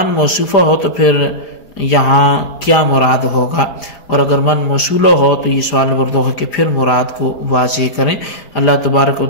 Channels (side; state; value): right; late; 4.9 ms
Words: موصوفہ ہو تو پھر یہاں کیا مراد ہوگا، اور اگر من موصولہ ہو تو یہ سوال نمبر 2 ہے کہ پھر مراد کو واضح کریں۔ اللہ تبارک و